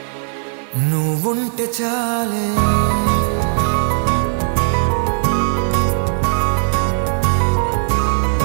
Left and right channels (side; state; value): left; silent; 68 dB below the other